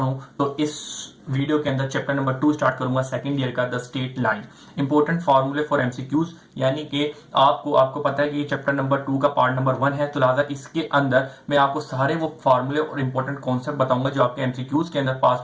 तो इस वीडियो के अंदर चैप्टर नंबर 2 स्टार्ट करूंगा, सेकंड ईयर का, द स्टेट लाइन, इंपॉर्टेंट फॉर्मूले फॉर एमसीक्यूज। यानी कि आपको पता है कि चैप्टर नंबर 2 का पार्ट नंबर 1 है, तो लिहाजा इसके अंदर मैं आपको सारे वो फॉर्मूले और इंपॉर्टेंट कॉन्सेप्ट बताऊंगा जो आपके एमसीक्यूज के अंदर पास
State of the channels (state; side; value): identical; both; correlation 1.00